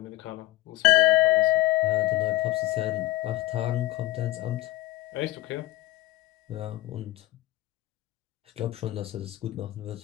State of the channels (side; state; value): right; quieter; 17.3 dB